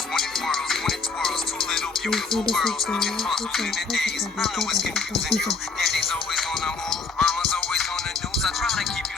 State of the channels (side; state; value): right; quieter; 4.5 dB